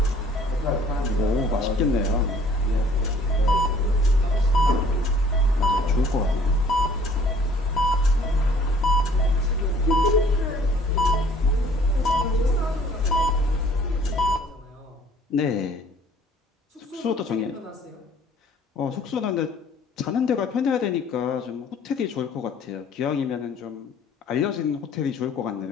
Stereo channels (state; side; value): normal; both; correlation 0.56